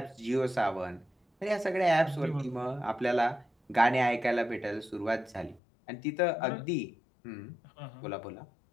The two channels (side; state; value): right; drops out; at 5.6 s